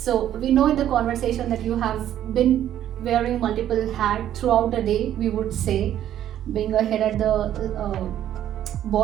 we know in the conversation that you have been wearing multiple hats throughout the day, we would say, being a head at the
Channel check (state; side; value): quieter; left; 11.4 dB